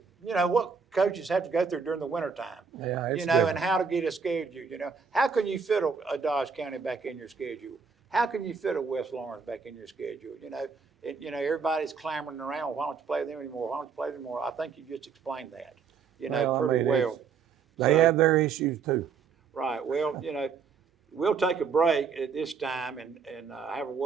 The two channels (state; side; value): quieter; left; 5.7 dB